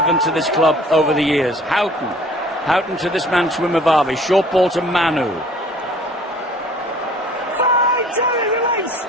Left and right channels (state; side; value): normal; both; correlation 0.52